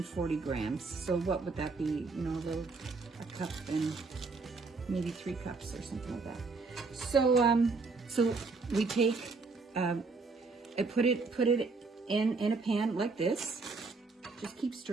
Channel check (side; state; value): left; quieter; 4.1 dB